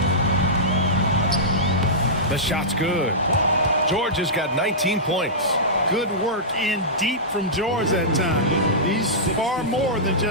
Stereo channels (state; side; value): normal; both; correlation -0.15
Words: The shot's good. George has got 19 points. Good work in deep from George that time. He's far more than